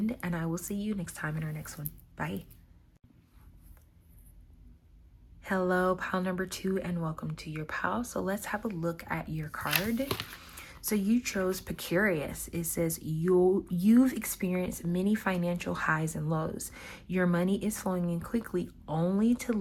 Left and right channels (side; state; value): both; identical; correlation 1.00